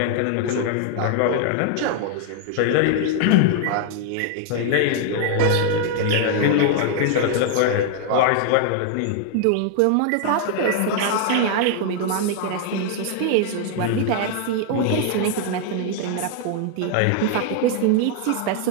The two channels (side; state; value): both; different; correlation 0.00